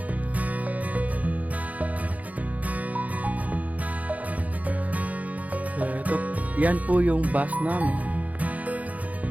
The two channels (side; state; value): left; late; 0.072 ms